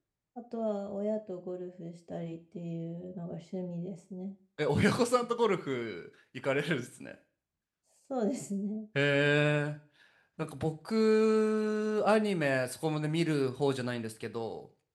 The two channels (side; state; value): both; identical; correlation 1.00